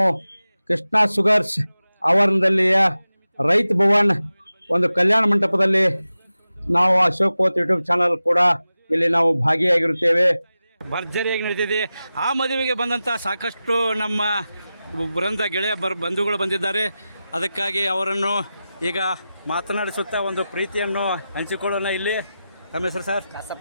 ಕೃಷ್ಣ ಶುಗರ್ಸ್ ಆವರಣದಲ್ಲಿಯ ರೈತ ಭವನ್ ಒಂದು ಕಲ್ಯಾಣ ಮಂಟಪದಲ್ಲಿ ನಾವು ಅಶೋಕ್ ಕೋತ್ ಯೂಟ್ಯೂಬ್ ಚಾನಲ್ ಕೂಡ ಇಲ್ಲಿ ನಾವು ಭಾಗಿಯಾಗಿರುತ್ತೇವೆ. ಭರ್ಜರಿಯಾಗಿ ನಡೀತಿದೆ. ಆ ಮದುವೆಗೆ ಬಂದಂಥ ಸಾಕಷ್ಟು ನಮ್ಮ ಬೃಂದ ಗೆಳೆಯ ಬಂಧುಗಳು ಬಂದಿದ್ದಾರೆ. ಅದಕ್ಕಾಗಿ ಅವರನ್ನು ಈಗ ಮಾತನಾಡಿಸುತ್ತಾ ಒಂದು ಪ್ರೀತಿಯನ್ನು ಹಂಚಿಕೊಳ್ಳೋಣ. ಇಲ್ಲಿ ತಮ್ಮ ಹೆಸರು ಸರ್?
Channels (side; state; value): both; inverted; correlation -0.94